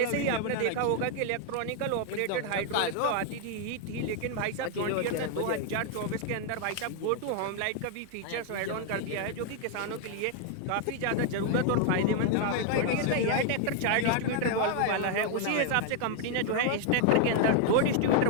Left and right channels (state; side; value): different; both; correlation 0.00